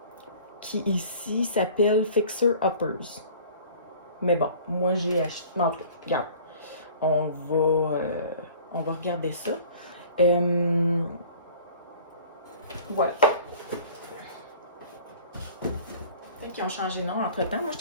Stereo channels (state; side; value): inverted; both; correlation -0.47